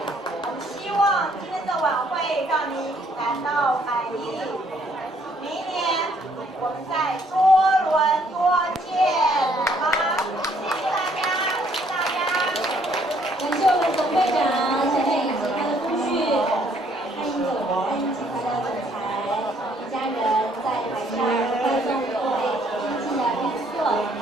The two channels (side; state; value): both; normal; correlation 0.65